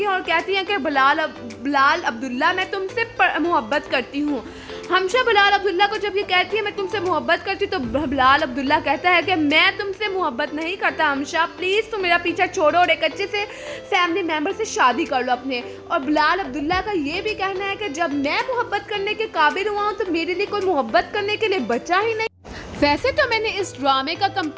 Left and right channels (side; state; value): both; identical; correlation 1.00